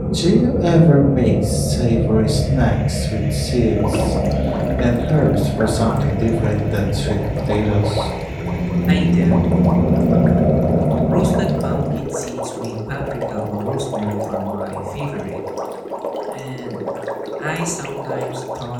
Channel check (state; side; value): identical; both; correlation 1.00